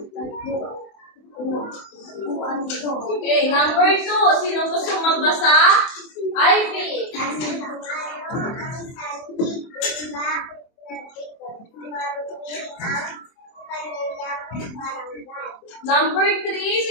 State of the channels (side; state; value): right; late; 24 ms